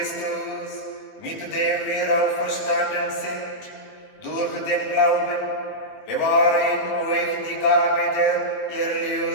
mit dem wir auferstanden sind, durch den Glauben, bewahre in euch die Gabe der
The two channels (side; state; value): right; late; 20 ms